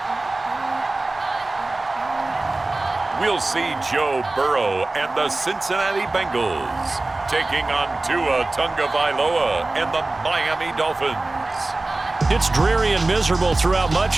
We'll see Joe Burrow and the Cincinnati Bengals taking on Tua Tagovailoa and the Miami Dolphins. It's dreary and miserable throughout much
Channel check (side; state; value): left; quieter; 3.0 dB